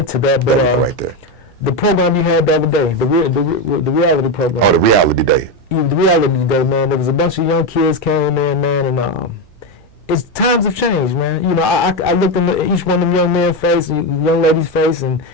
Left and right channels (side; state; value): both; normal; correlation 0.11